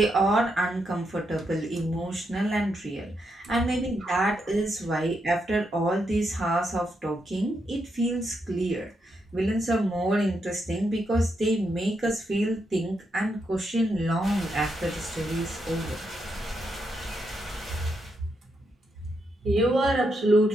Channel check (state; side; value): normal; both; correlation 0.81